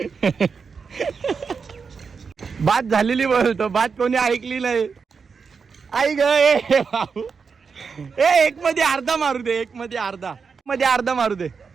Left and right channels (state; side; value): quieter; left; 5.5 dB